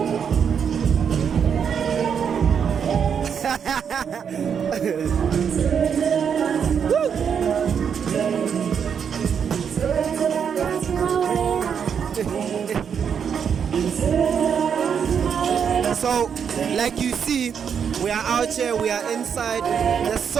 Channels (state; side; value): quieter; left; 7.3 dB